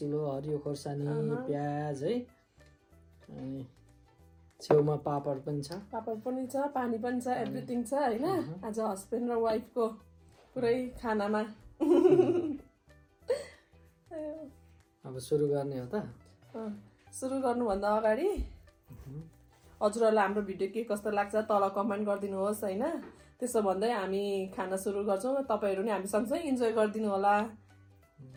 हरियो खोर्सानी प्याज है, अनि छेउमा पापड पनि छ, पानी पनि छ, एभ्रिथिङ छ हैन। आज हस्बेन्ड र वाइफको पुरै खानामा अब सुरु गर्ने हो त। सुरु गर्नुभन्दा अगाडि हजुरहरूलाई हाम्रो भिडियो के कस्तो लाग्छ तल कमेन्ट गरिदिनुहोस् हैन। त्यसो भन्दै हामी खाना सुरु गर्छौँ, तपाईहरु नि हामी सँगसँगै इन्जोय गरिदिनु होला।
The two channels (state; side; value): identical; both; correlation 1.00